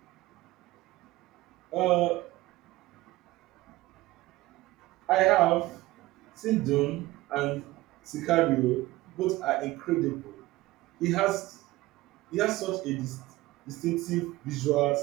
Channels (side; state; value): left; quieter; 18.4 dB